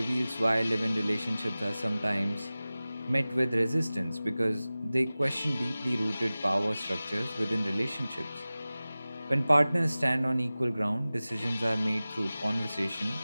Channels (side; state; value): both; inverted; correlation -0.97